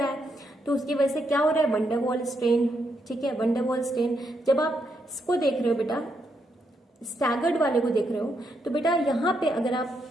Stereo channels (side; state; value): both; normal; correlation 0.79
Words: है। तो उसकी वजह से क्या हो रहा है, वंडरवॉल स्ट्रेन। ठीक है, वंडरवॉल स्ट्रेन। जब आप इसको देख रहे हो बेटा, स्टैगर्ड वाले को देख रहे हो, तो बेटा यहाँ पे अगर